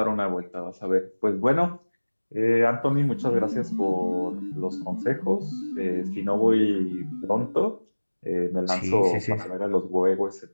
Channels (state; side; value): inverted; both; correlation -1.00